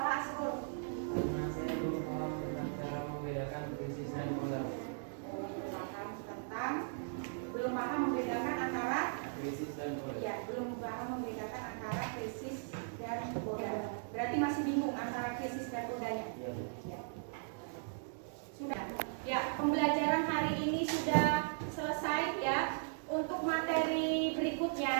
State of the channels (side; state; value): left; silent; digital silence